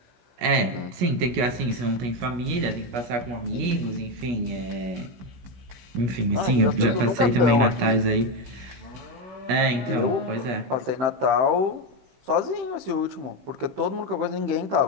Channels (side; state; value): left; late; 16 ms